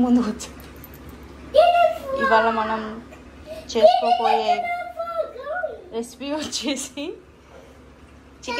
ముందుకు వచ్చాం. ఇవాళ మనం చేసుకోబోయే రెసిపీ వచ్చేసి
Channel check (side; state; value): both; identical; correlation 1.00